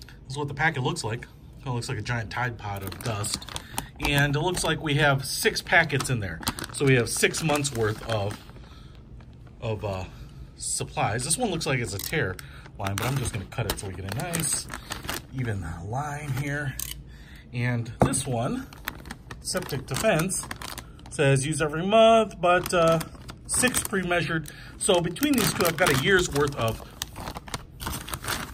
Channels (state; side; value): identical; both; correlation 1.00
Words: This is what the packet looks like. It looks like a giant Tide Pod of dust. And it looks like we have 6 packets in there. So we have 6 months worth of supplies. This one looks like it's a tear line, but I'm just gonna cut it so we get a nice, even line here. And this one, Septic Defense, says use every month, but 6 pre-measured. So between these two, I've got a year's worth of